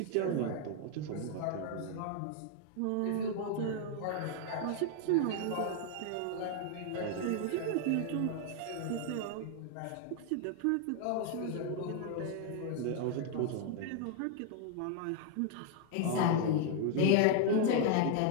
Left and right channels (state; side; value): different; both; correlation 0.00